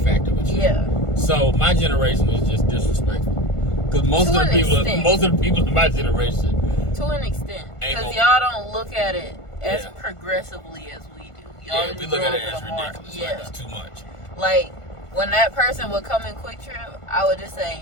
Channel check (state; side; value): late; right; 1.5 ms